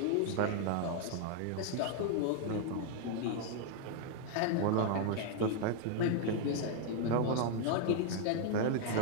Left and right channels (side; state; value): both; different; correlation 0.00